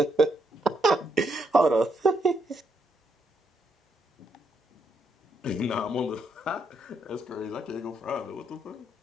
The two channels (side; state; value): both; normal; correlation 0.76